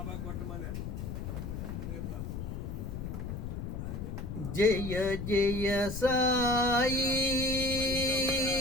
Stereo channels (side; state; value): left; noise; rumble, 6 dB below the sound